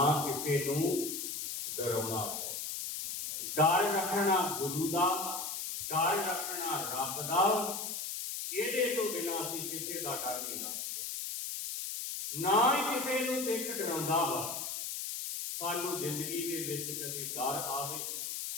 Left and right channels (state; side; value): noise; left; hiss, 4 dB below the sound